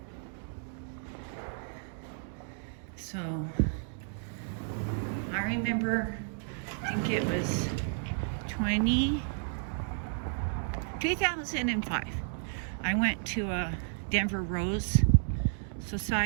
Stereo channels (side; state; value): left; silent; digital silence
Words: So remember, I think it was 2005. I went to a Denver Rose